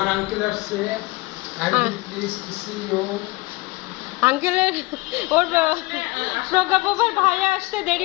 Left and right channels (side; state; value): right; quieter; 23.2 dB